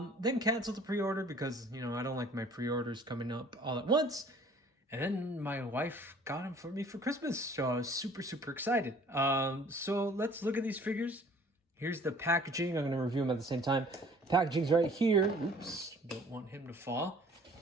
canceled the pre-order because, I don't like my pre-orders coming up all at once. And then my wife got them for me for Christmas, so I was super excited. So let's look at these figures. Here's the packaging. I'm going to review them at the same time. Packaging's right here. Oops, don't want him to fall.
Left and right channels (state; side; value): normal; both; correlation 0.53